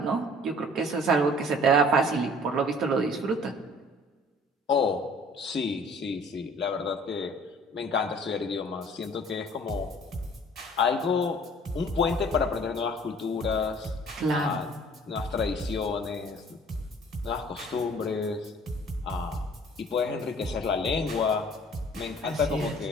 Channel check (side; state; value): both; normal; correlation 0.52